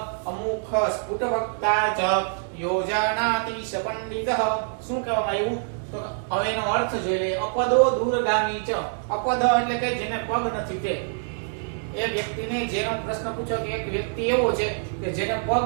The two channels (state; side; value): silent; left; digital silence